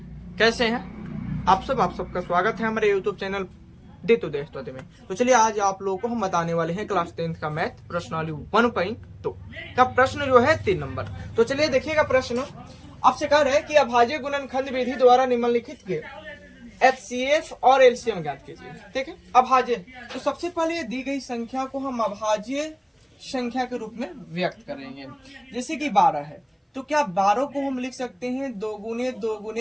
कैसे हैं आप सबका स्वागत है हमारे यूट्यूब चैनल दे तो दोस्तों में। तो चलिए आज आप लोगों को हम बताने वाले हैं क्लास 10th का मैथ प्रश्नावली 1.2 का प्रश्न जो है 3 नंबर। तो चलिए देखिएगा, प्रश्न आपसे कह रहे हैं कि अभाज्य गुणनखंड विधि द्वारा निम्नलिखित के HCF और LCM ज्ञात कीजिए। ठीक है, अभाज्य। तो सबसे पहले दी गई संख्या को हम अभाज्य संख्या के रूप में व्यक्त करेंगे। जैसे कि 12 है, तो क्या 12 को हम लिख सकते हैं 2 गुने 2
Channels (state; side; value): identical; both; correlation 1.00